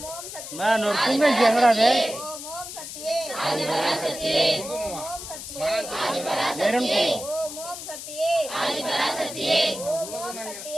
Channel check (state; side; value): noise; left; hiss, 10 dB below the sound